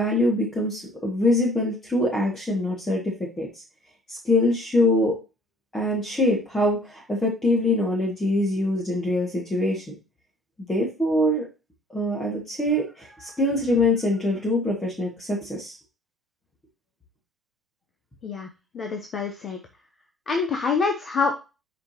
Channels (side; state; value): both; normal; correlation 0.55